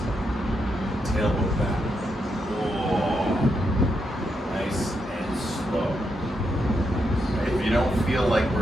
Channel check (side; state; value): both; normal; correlation 0.82